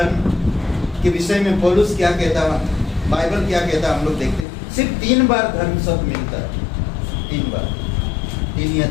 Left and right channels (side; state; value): right; drops out; at 4.5 s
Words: के विषय में पौलुस क्या कहता है, बाइबल क्या कहता है, हम लोग देखते हैं। सिर्फ 3 बार धर्म शब्द मिलता है, 3 बार, 3 या